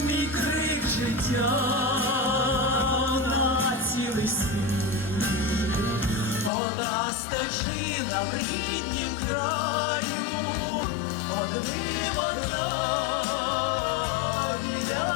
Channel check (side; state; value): right; drops out; at 6.5 s